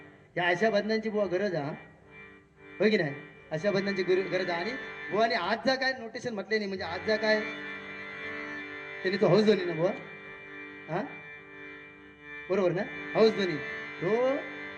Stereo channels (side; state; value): both; identical; correlation 1.00